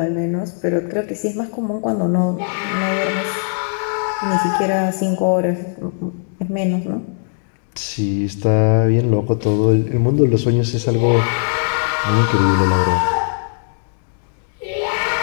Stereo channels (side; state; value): right; silent; digital silence